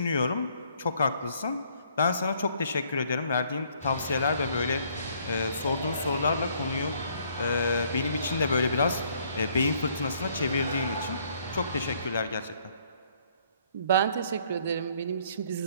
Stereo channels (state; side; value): inverted; both; correlation -0.64